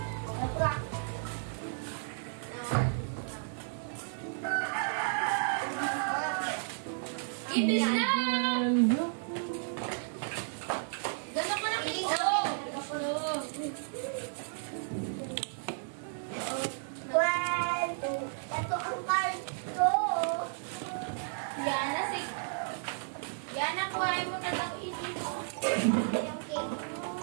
Bilis na! Gano'n ko na piso. One, two. Ito ang card ko. Yana, sige. Yana, kuhain mo na lang ito. Yung cake mo.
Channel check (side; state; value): left; silent; 56 dB below the other